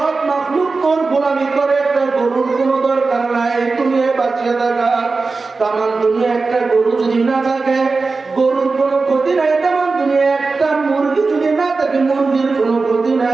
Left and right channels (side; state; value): left; quieter; 4.0 dB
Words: মাখলুক তোর গোলামি করে একটা গরুর কোনো দরকার নাই দুনিয়ায় বাঁচিয়ে থাকা তামাম দুনিয়া একটা গরু যদি না থাকে গরুর কোনো ক্ষতি নাই তামাম দুনিয়া একটা মুরগি যদি না থাকে মুরগির কোনো ক্ষতি